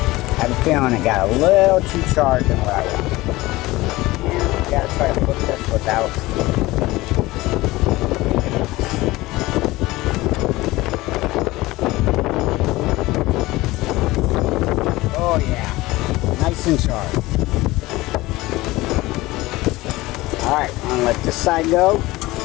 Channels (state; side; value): quieter; right; 19.4 dB